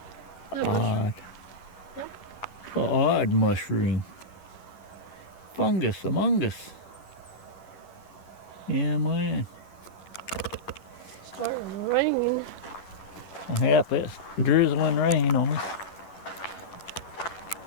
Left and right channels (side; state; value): right; late; 11 ms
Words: Odd. Odd mushroom. Fungus among us. Yeah, man. Starting raining. Yep, it's drizzling rain on us.